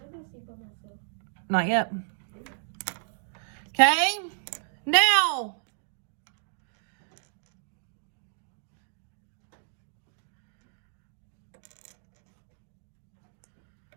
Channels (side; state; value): left; silent; 57 dB below the other